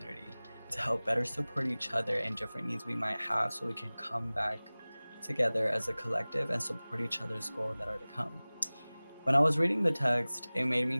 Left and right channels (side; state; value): both; inverted; correlation -0.99